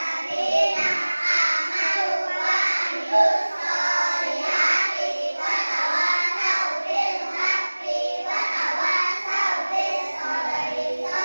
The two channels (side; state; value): both; inverted; correlation -1.00